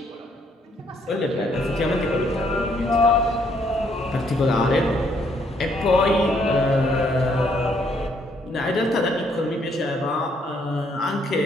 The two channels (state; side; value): normal; both; correlation 0.69